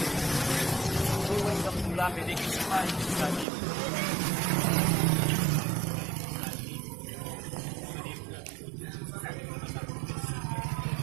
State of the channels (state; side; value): drops out; left; at 3.5 s